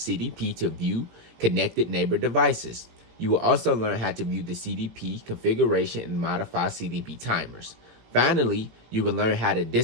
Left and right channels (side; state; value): left; late; 18 ms